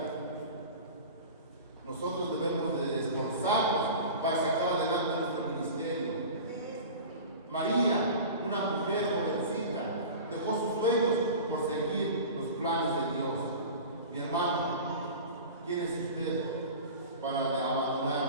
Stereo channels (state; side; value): inverted; both; correlation -0.35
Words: Nosotros debemos de esforzarnos para sacar adelante nuestro ministerio. María, una mujer jovencita, dejó sus sueños por seguir los planes de Dios. Mi hermano, ¿quién es usted para abandonar